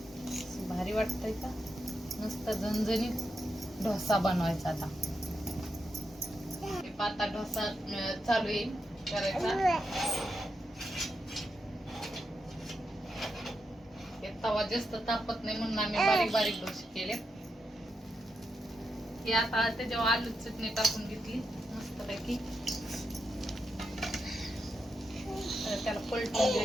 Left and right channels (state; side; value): normal; both; correlation 0.85